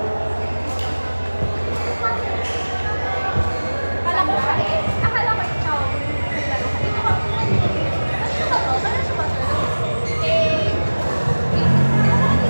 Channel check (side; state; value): both; inverted; correlation -1.00